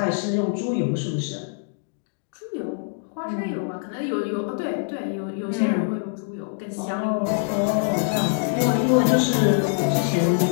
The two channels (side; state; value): right; silent; digital silence